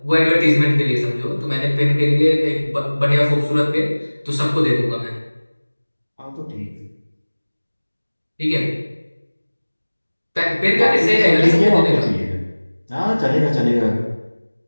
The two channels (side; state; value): both; inverted; correlation -1.00